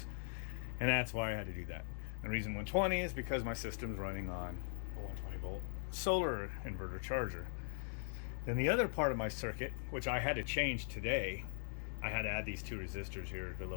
and that's why I had to do that. The reason 120 is because my system's running on a 120 volt solar inverter charger. Then the other part of my circuit, which I had to change today, I had to add these two resistors here to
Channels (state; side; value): silent; right; digital silence